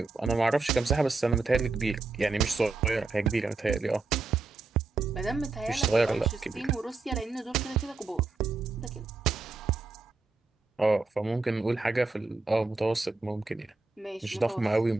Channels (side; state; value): left; quieter; 3.9 dB